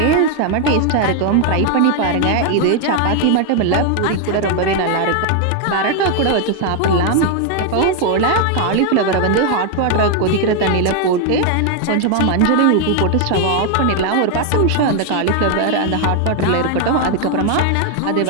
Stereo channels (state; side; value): different; both; correlation 0.01